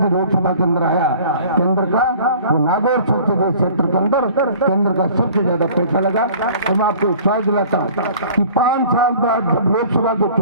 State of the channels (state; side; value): inverted; both; correlation -0.48